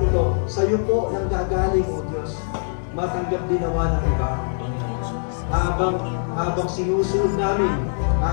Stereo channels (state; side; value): silent; right; digital silence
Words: sa iyo po nang gagaling, O Diyos. Matanggap din nawa ng iba, Panginoon. Habang sinusunod namin,